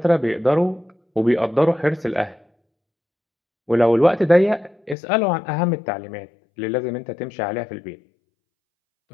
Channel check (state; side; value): drops out; right; at 5.0 s